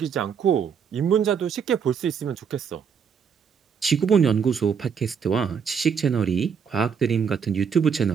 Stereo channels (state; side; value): quieter; left; 6.8 dB